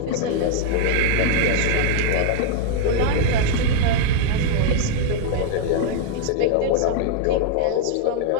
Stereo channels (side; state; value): both; different; correlation 0.00